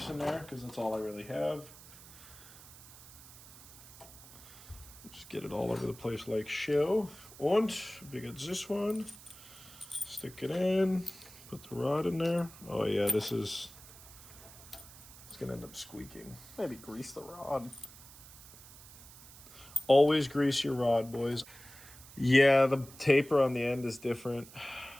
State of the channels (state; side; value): noise; right; hiss, 19 dB below the sound